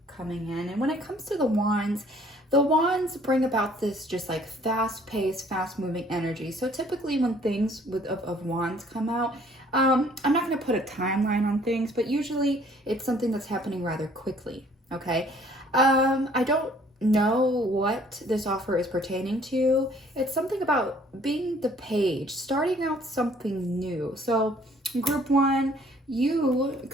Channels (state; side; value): normal; both; correlation 0.58